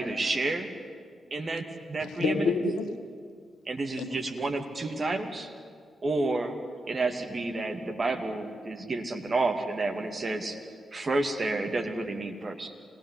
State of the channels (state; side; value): normal; both; correlation 0.85